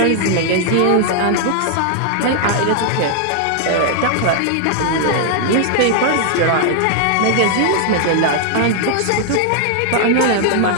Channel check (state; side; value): different; both; correlation 0.00